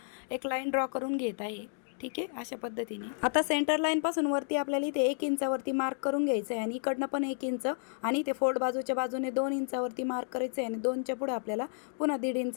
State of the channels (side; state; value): right; silent; digital silence